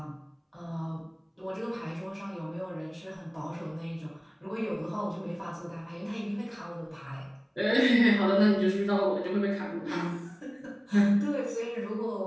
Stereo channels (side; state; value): both; identical; correlation 1.00